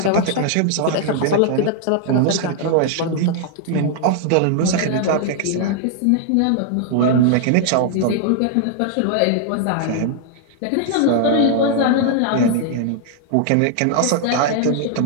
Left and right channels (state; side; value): different; both; correlation 0.00